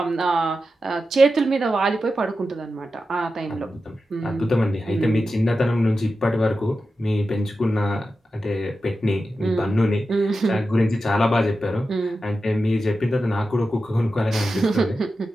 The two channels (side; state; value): both; normal; correlation 0.91